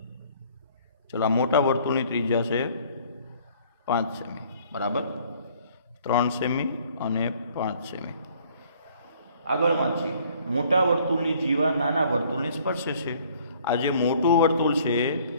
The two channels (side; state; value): both; inverted; correlation -0.58